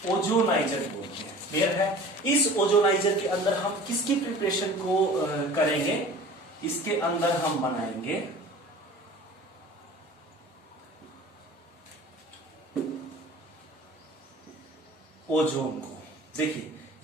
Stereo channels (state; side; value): normal; both; correlation 0.42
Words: ओजोनाइजर बोलते हैं। क्लियर है? इस ओजोनाइजर के अंदर हम किसकी प्रिपरेशन को करेंगे? इसके अंदर हम बनाएंगे ओजोन को। देखिए